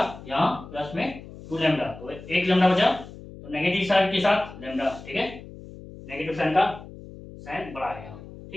यहाँ प्लस में 2 लैम्डा, तो 1 लैम्डा बचा, तो नेगेटिव साइन के साथ लैम्डा, ठीक है, नेगेटिव साइन का साइन बड़ा है यहाँ,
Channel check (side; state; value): left; noise; hum, 16 dB below the sound